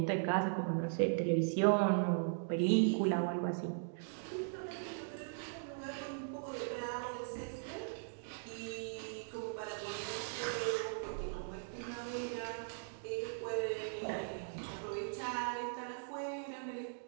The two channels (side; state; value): left; silent; digital silence